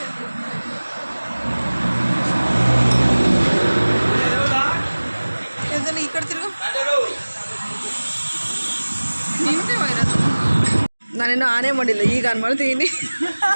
ಈ ಕಡೆ ತಿರುಗು. ನಾನೇನು ಆನೆ ಮಾಡಿಲ್ಲ, ಈಗ ಆನ್ ಮಾಡ್ತೀನಿ.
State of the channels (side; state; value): both; inverted; correlation -1.00